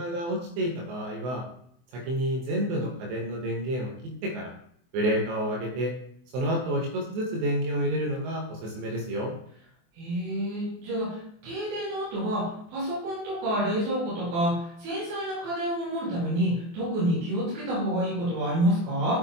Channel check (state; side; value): late; left; 24 ms